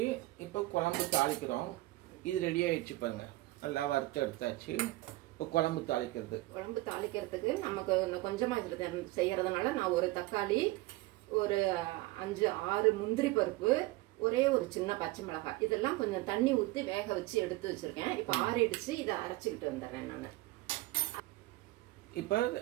இப்போ குழம்பு தாளிக்கிறோம். இது ரெடி ஆயிடுச்சு பாருங்க. நல்லா வறுத்து எடுத்தாச்சு. இப்போ குழம்பு தாளிக்கிறதுக்கு நமக்கு கொஞ்சமாக இதில் செய்யறதுனால நான் ஒரு தக்காளி, ஒரு 5-6 முந்திரி பருப்பு, ஒரே ஒரு சின்ன பச்சை மிளகாய், இதெல்லாம் கொஞ்சம் தண்ணி ஊற்றி வேக வச்சு எடுத்து வச்சிருக்கேன். இப்போ ஆறிடுச்சு. இதை அரைச்சிக்கிட்டு வந்துடுறேன் நான். இப்போ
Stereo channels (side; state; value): left; quieter; 19.5 dB